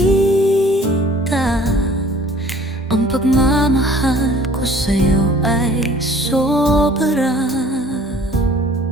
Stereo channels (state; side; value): normal; both; correlation 0.52